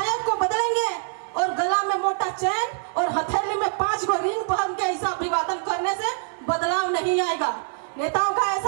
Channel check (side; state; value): left; silent; digital silence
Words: को बदलेंगे और गला में मोटा चैन और हथेली में 5 गो रिंग पहन के ऐसा अभिवादन करने से बदलाव नहीं आएगा। नेताओं का